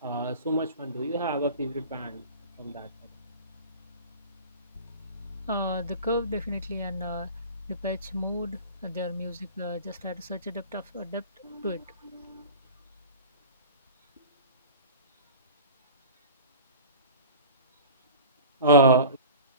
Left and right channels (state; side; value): inverted; both; correlation -0.39